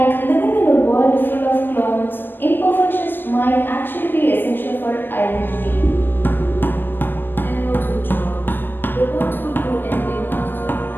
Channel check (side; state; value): right; late; 0.091 ms